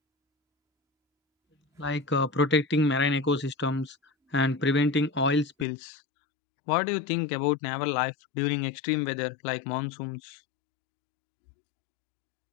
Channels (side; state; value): right; drops out; at 5.7 s